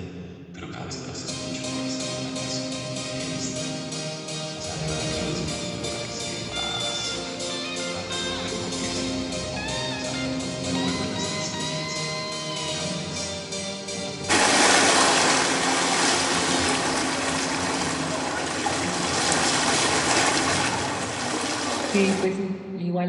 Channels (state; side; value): identical; both; correlation 1.00